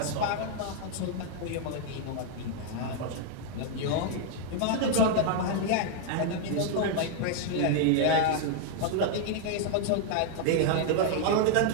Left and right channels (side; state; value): both; different; correlation 0.00